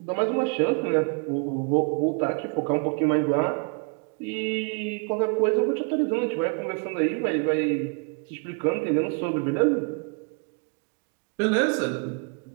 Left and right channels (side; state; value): left; quieter; 36.2 dB